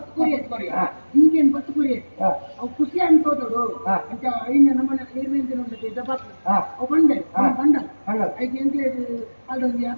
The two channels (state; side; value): inverted; both; correlation -1.00